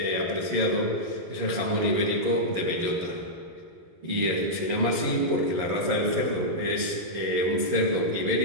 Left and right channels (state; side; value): late; left; 11 ms